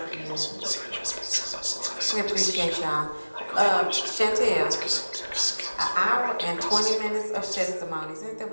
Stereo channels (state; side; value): inverted; both; correlation -1.00